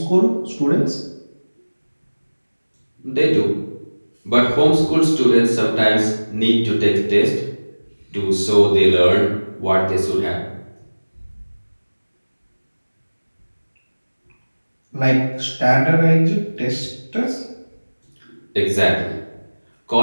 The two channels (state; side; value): inverted; both; correlation -1.00